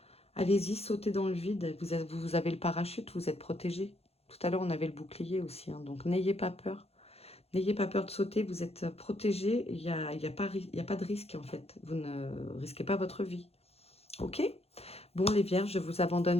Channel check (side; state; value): right; late; 0.29 ms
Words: Allez-y, sautez dans le vide. Vous avez le parachute, vous êtes protégé. Tout à l'heure, on avait le bouclier aussi. Hein, donc, n'ayez pas peur. N'ayez pas peur de sauter. Vous êtes protégé. Il y a pas de risque, en fait. Vous ne risquez pas votre vie. OK? Bon, les vierges, je vous